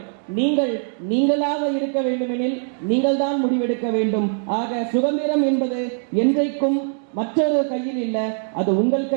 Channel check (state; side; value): silent; left; 64 dB below the other